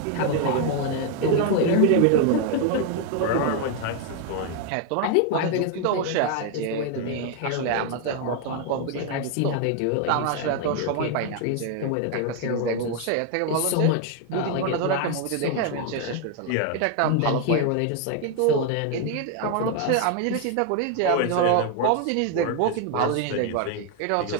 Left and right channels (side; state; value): both; different; correlation 0.01